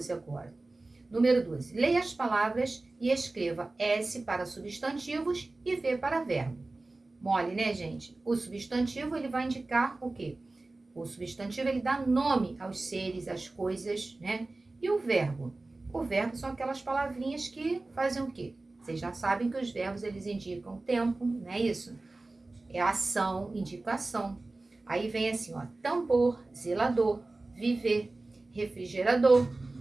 agora. Número 12. Leia as palavras e escreva S para substantivos e V para verbo. Mole, né, gente? O substantivo, ele vai indicar o quê? O substantivo, ele dá nome aos seres, às coisas, né? E o verbo? O verbo são aquelas palavrinhas que fazem o quê? Vocês já sabem que os verbos, eles indicam tempo, não é isso? É ação, indica ação. Aí vem assim, ó, tambor, zelador, viver, refrigerador,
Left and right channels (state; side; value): quieter; left; 3.1 dB